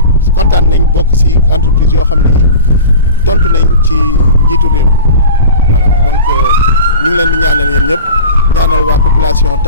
kontaan nañ bokk ci entreprise yoo xam ne tontu nañ ci njiitu réew mi voilà donc ñu ngi leen di ñaanal yéen ñëpp ñaanal waa population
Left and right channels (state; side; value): inverted; both; correlation -0.36